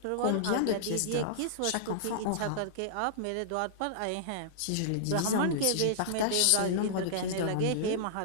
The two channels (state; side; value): different; both; correlation -0.02